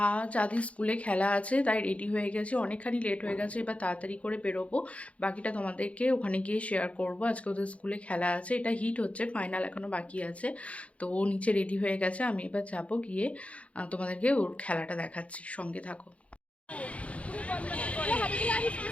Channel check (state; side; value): late; right; 0.064 ms